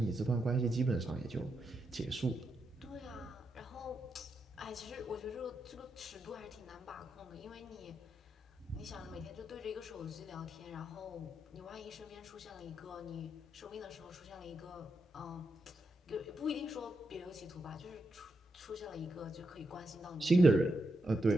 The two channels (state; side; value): normal; both; correlation 0.84